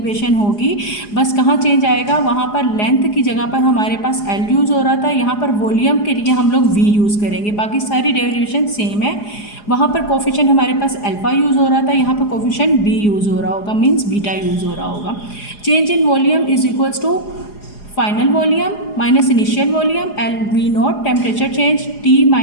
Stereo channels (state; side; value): late; right; 4.8 ms